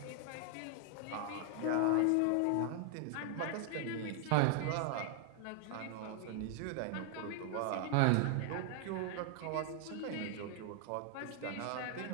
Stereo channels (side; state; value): both; different; correlation 0.00